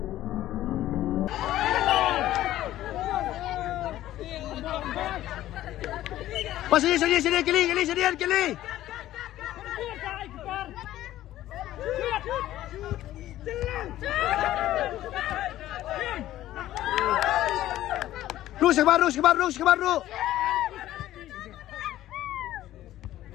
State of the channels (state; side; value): quieter; right; 14.0 dB